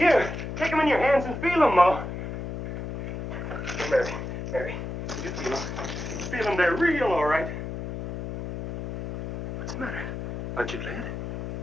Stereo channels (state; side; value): noise; left; hum, 6 dB below the sound